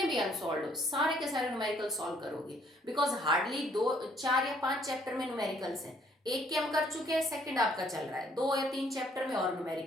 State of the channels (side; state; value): both; normal; correlation 0.65